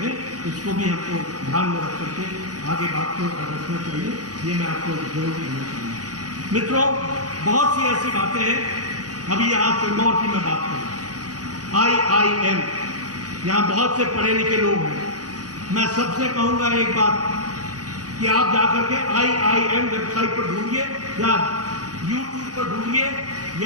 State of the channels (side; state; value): left; late; 0.68 ms